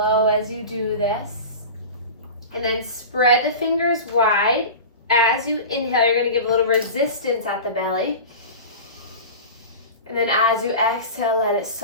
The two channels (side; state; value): both; inverted; correlation -0.31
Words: as you do this. And then spread the fingers wide. As you inhale, you're going to give a little resistance at the belly. And then as you exhale, let it